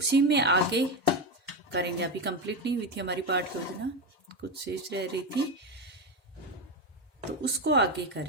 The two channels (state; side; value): normal; both; correlation 0.14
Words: में आगे करेंगे। अभी कंप्लीट नहीं हुई थी हमारी पाठ योजना, कुछ शेष रह रही थी, तो उसको आगे